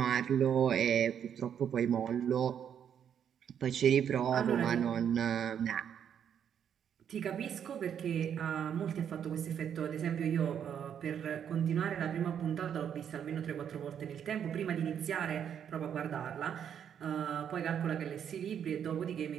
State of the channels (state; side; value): quieter; left; 8.6 dB